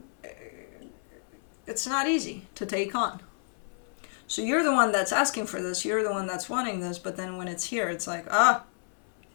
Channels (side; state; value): right; silent; 56 dB below the other